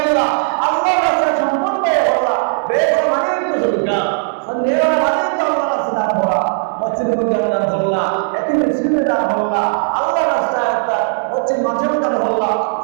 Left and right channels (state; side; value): silent; left; 68 dB below the other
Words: আল্লাহর রাস্তায় সম্পদ ব্যয় করলাম, ব্যয় করা মানে তো সজ্ঞা সন্দেহ মানে তো আল্লাহর রাস্তায় দান করা, মসজিদের মধ্যে দান করলাম, এতিম মিসকিনে দান করলাম, আল্লাহর রাস্তায় একটা মসজিদ মাঝে দান করলাম,